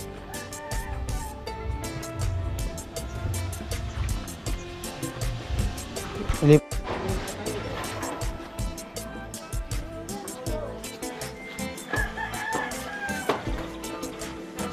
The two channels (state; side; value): identical; both; correlation 1.00